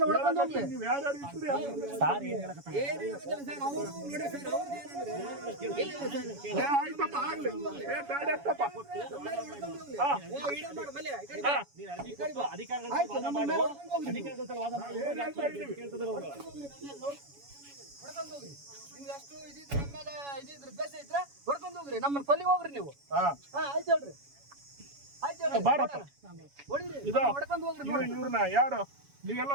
ಹೊಡ್ಕೊಂಡು ಹೋಗ್ಲಿ. ನೀವು ಯಾರ್ಯಾರು ಇದ್ದೀರಿ ಸಾರ್ ಏನ್ ಹೇಳಕತ್ತಾರ? ಏನಿಲ್ಲ ಸರ್, ಅವ್ರು ನೋಡಿ ಸರ್, ಅವ್ರು ಏನಂದ್ರೆ ಇಲ್ಲ ಸರ್. ಆಯ್ತಪ್ಪ ಆಗ್ಲಿ. ಗಾಡಿ ಹತ್ತಪ್ಪ. ವಿಡಿಯೋ ಮಾಡು, ಮಲ್ಯ, ಈ ಕಡೆ ಹಾ, ನೀನ್ ಅರ್ಜಿ ಕೊಟ್ಟು ಅಧಿಕಾರಿಗಳ ಆಯ್ತು, ವಾದ ನಮ್ಮ ಮಾಡು. ಮೇಲೆ ಹೊಡ್ಕೊಂಡು ಹೋಗ್ಲಿ. ಅಧಿಕಾರಿಗಳ ವಾದ ಮಾಡು. ಕೇಳ್ತಿದ್ರು ಅವ್ರು. ಹೊಡ್ಕೊಂಡು ಹೋಗ್ರಿ. ನೀವು ಎಷ್ಟು ಇದಿದ್ರೆ ನಮ್ಮ ಮೇಲೆ ಇದಿದ್ರೆ ದ್ವೇಷ ಇದ್ರೆ ಹೊಡ್ಕೊಂಡು ಹೋಗ್ರಿ. ನಮ್ಮನ್ನ ಕೊಲ್ಲಿಗೆ ಹೋಗ್ರಿ ನೀವು. ಹಾ ಆಯ್ತು ಹೇಳ್ರಿ, ಆಯ್ತು ಹೇಳ್ರಿ. ಬಾರಪ್ಪ. ಹೊಡೀರಿ, ಇದು ಹೊಡ್ಕೊಂಡು ಹೋಗ್ರಿ. ನೋಡಿ. ಇವ್ರನ್ನ ಯಾರು ನೀವೆಲ್ಲ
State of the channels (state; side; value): late; left; 7.1 ms